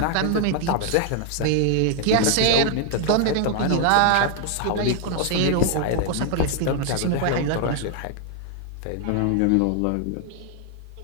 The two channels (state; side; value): different; both; correlation 0.00